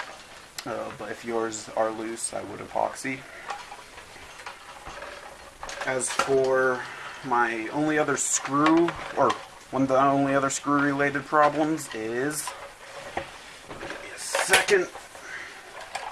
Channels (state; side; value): identical; both; correlation 1.00